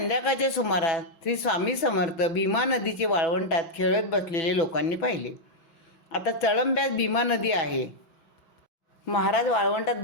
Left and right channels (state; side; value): late; right; 6.0 ms